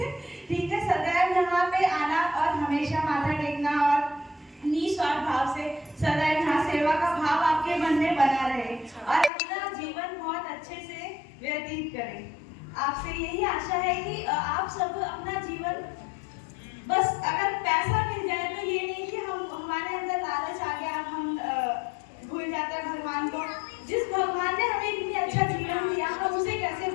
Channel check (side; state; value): right; drops out; at 9.3 s